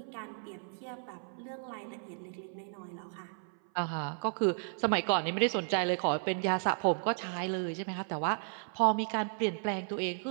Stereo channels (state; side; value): silent; left; 55 dB below the other